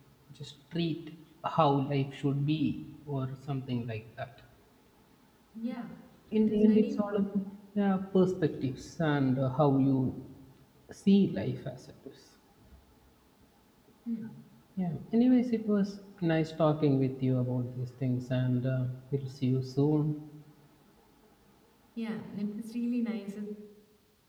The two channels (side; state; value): both; identical; correlation 1.00